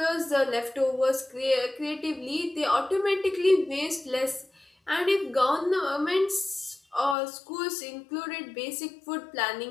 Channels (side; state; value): right; drops out; at 7.2 s